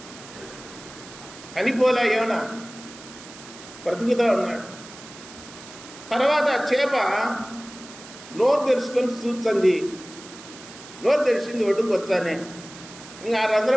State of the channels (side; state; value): right; noise; hiss, 17 dB below the sound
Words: చనిపోలే యోన, బ్రతుకుతూ ఉన్నాడు. తర్వాత చేప నోరు తెరుచుకొని చూస్తుంది. నోరు తెరిచింది, ఒడ్డుకు వచ్చానే. ఇంకా ఆ